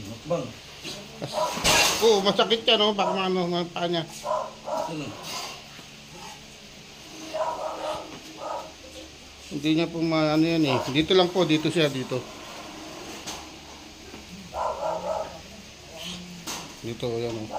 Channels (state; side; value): identical; both; correlation 1.00